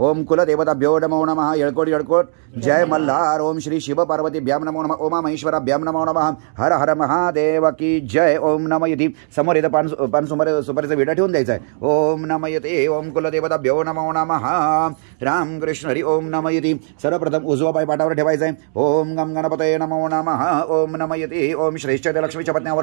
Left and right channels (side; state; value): left; silent; 67 dB below the other